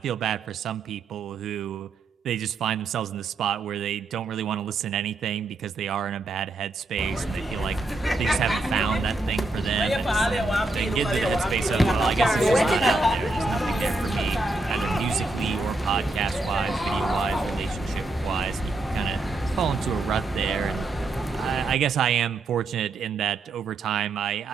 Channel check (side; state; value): left; quieter; 3.2 dB